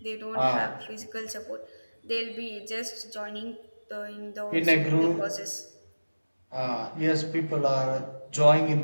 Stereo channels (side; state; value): both; inverted; correlation -1.00